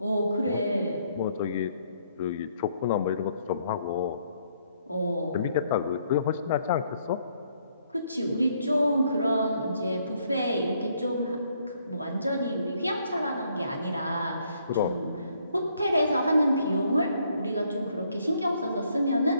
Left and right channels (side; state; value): both; inverted; correlation -0.69